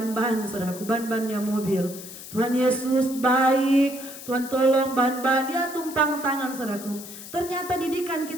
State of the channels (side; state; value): left; noise; hiss, 13 dB below the sound